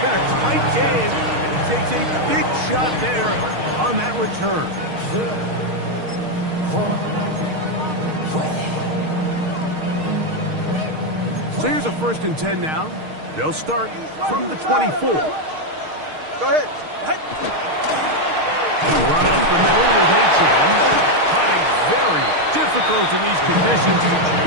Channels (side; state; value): left; late; 6.5 ms